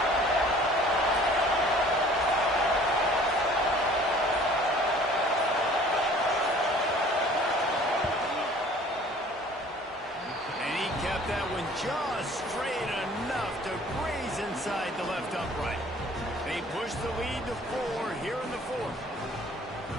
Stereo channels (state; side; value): normal; both; correlation 0.51